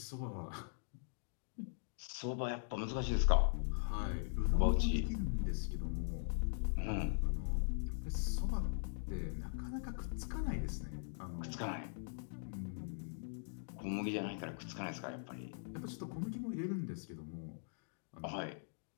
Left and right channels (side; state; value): right; silent; digital silence